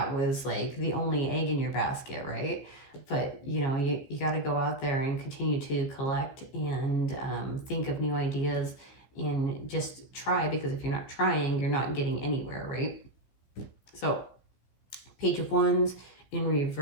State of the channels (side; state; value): right; late; 15 ms